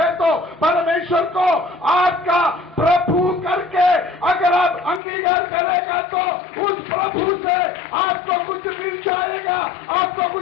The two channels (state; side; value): drops out; right; at 5.0 s